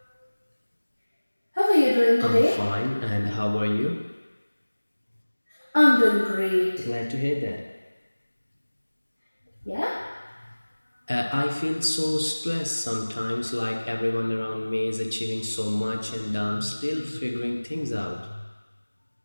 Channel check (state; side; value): inverted; both; correlation -1.00